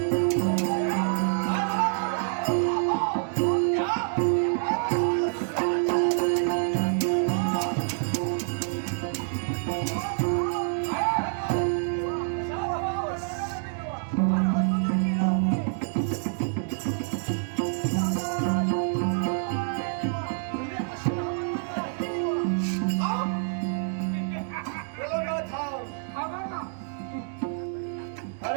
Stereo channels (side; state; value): left; silent; 60 dB below the other